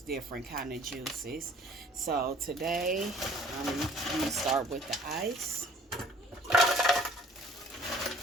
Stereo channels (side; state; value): both; normal; correlation 0.53